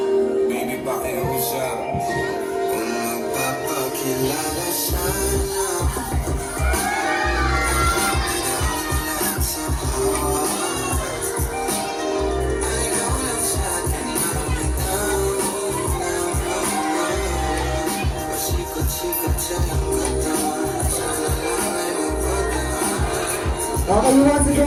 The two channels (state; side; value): identical; both; correlation 1.00